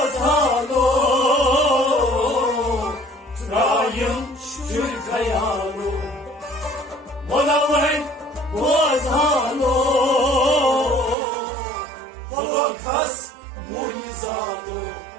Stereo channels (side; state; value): left; drops out; at 11.2 s